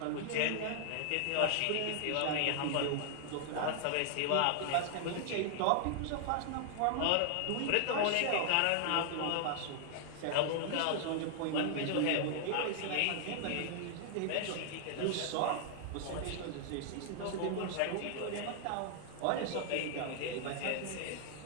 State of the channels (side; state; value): both; different; correlation 0.00